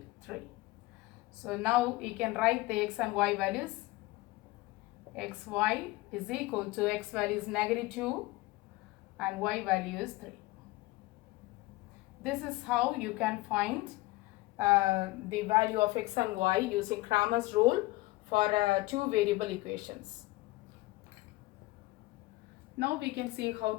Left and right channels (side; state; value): right; quieter; 20.3 dB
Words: 3. So now we can write the x and y values. Xy is equal to x value is negative 2 and y value is 3. This is how you can find the value of x and y using Cramer's rule for two variable equations. Now we can see